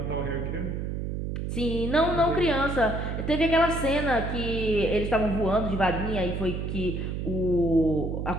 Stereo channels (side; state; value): right; noise; hum, 3 dB below the sound